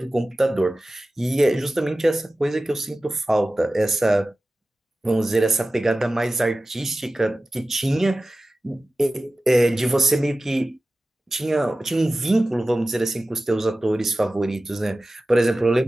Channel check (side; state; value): both; normal; correlation 0.96